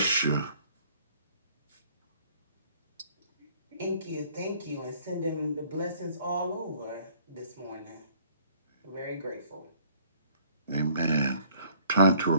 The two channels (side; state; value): both; inverted; correlation -0.58